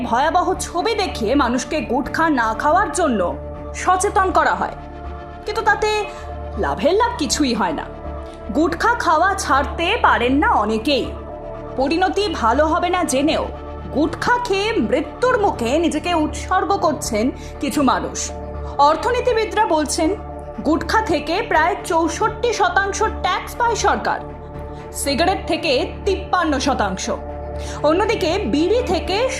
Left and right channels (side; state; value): both; identical; correlation 1.00